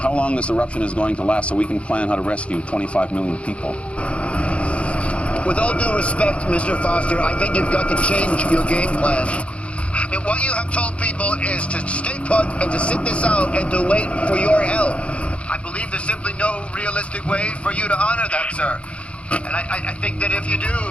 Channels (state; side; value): late; right; 0.061 ms